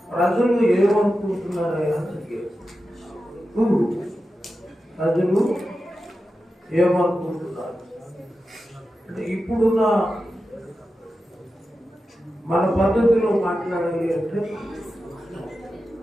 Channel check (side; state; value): both; normal; correlation 0.91